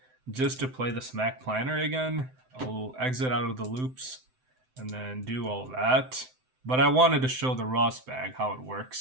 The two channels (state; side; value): late; left; 7.8 ms